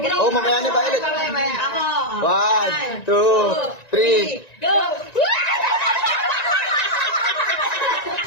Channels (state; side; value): late; right; 1.9 ms